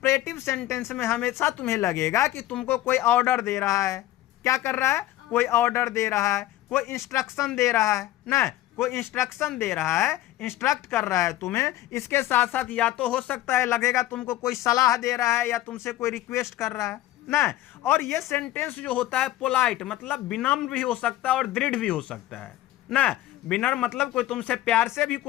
सेंटेंस में हमेशा तुम्हें लगेगा कि तुमको कोई ऑर्डर दे रहा है। क्या कर रहा है? कोई ऑर्डर दे रहा है, कोई इंस्ट्रक्शन दे रहा है ना, कोई इंस्ट्रक्शन दे रहा है, इंस्ट्रक्ट कर रहा है तुम्हें। इसके साथ साथ या तो हो सकता है लगेगा तुमको कोई सलाह दे रहा है या तुमसे कोई रिक्वेस्ट कर रहा है ना। और ये सेंटेंस जो होता है पोलाइट, मतलब विनम्र भी हो सकता है और दृढ़ भी हो सकता है ना। विनम्र मतलब कोई तुमसे प्यार से भी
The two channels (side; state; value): right; quieter; 15.0 dB